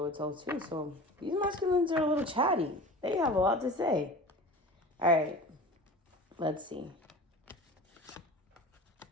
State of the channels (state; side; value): normal; both; correlation 0.36